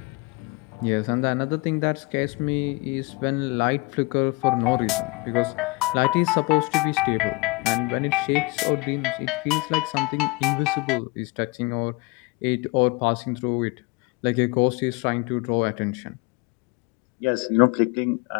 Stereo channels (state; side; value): quieter; right; 25.5 dB